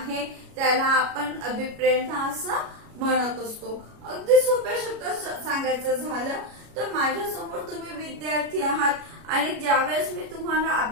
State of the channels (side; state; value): left; late; 33 ms